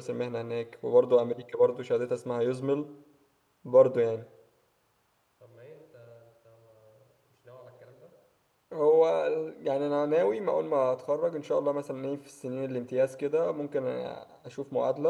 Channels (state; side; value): identical; both; correlation 1.00